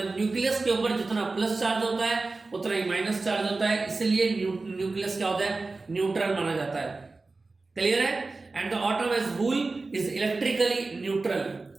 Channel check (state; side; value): quieter; left; 3.6 dB